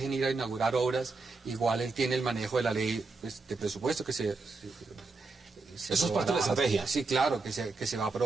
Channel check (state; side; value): quieter; left; 3.9 dB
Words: ir a inaugurar obras, igual él tiene el manejo de la ley pues, de presupuesto que Eso es parte de la estrategia. Sí, claro, que se va a